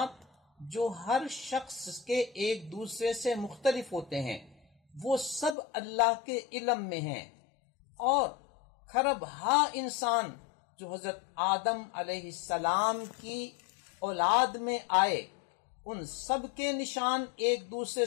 جو ہر شخص کے ایک دوسرے سے مختلف ہوتے ہیں وہ سب اللہ کے علم میں ہیں، اور کھرب ہا انسان جو حضرت آدم علیہ السلام کی اولاد میں آئے ان سب کے نشان ایک دوسرے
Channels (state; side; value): drops out; right; at 5.6 s